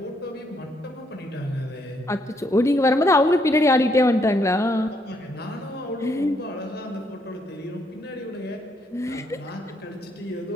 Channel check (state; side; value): normal; both; correlation 0.73